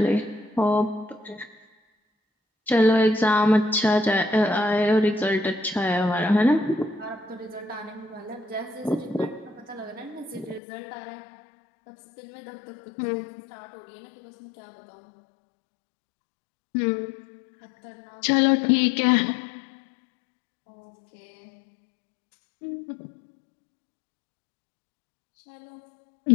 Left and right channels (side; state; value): right; drops out; at 10.6 s